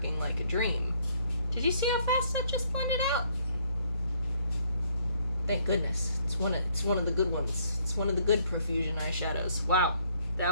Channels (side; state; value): both; inverted; correlation -0.65